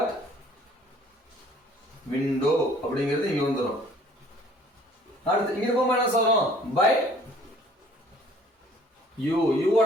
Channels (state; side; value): normal; both; correlation 0.55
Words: விண்டோ அப்படிங்கிறது இங்க வந்துரும். அடுத்து இங்க போகும்போது என்ன சொல்றோம்? By you.